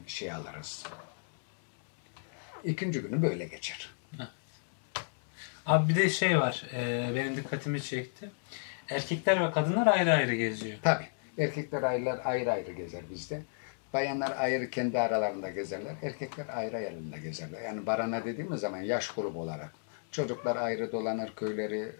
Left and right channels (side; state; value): right; silent; digital silence